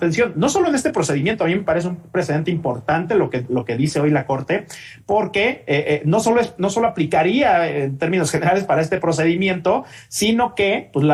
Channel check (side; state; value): both; identical; correlation 1.00